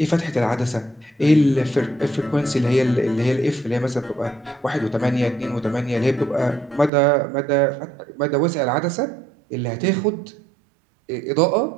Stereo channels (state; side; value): drops out; left; at 6.9 s